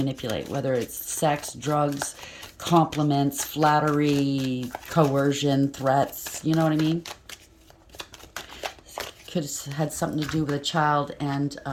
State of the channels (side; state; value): both; identical; correlation 1.00